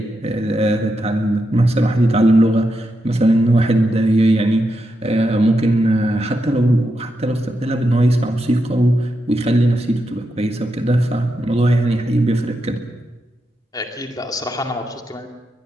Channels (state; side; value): normal; both; correlation 0.85